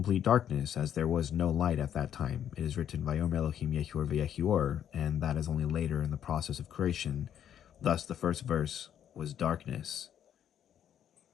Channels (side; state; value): right; quieter; 9.7 dB